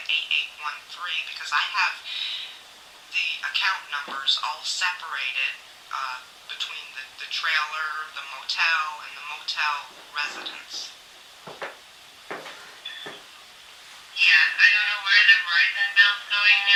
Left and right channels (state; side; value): identical; both; correlation 1.00